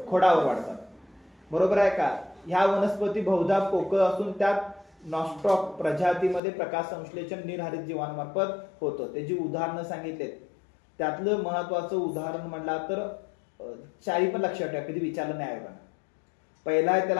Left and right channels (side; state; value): right; drops out; at 6.4 s